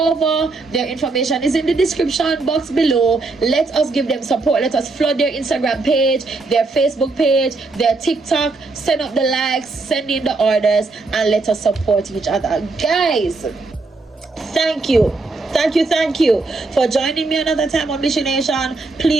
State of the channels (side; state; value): left; quieter; 3.6 dB